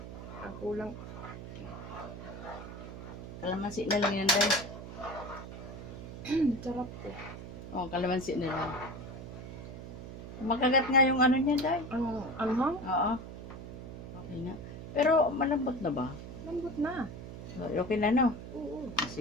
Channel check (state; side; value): noise; right; hum, 10 dB below the sound